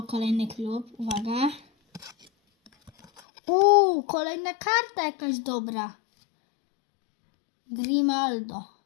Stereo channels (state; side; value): drops out; right; at 3.2 s